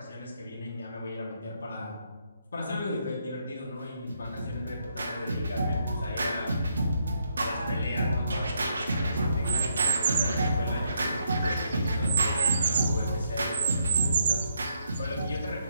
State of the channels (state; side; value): inverted; both; correlation -0.75